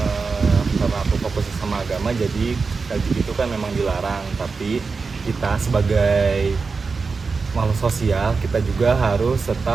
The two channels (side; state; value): left; quieter; 4.6 dB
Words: karena aku fokus sama agama, jadi LGBT itu kan memang dilarang. Tapi kita sebagai makhluk sosial, kita juga harus